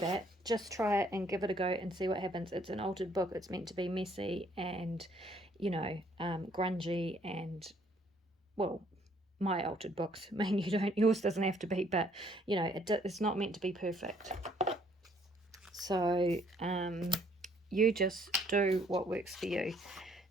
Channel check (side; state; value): both; normal; correlation 0.64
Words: Just try it and give it a go and see what happens. It's an altered book. It's meant to be messy and, you know, grungy and, well, my altered books. I mean, yours doesn't have to be, but, you know, it's not meant to be perfect. So you just do what works for you.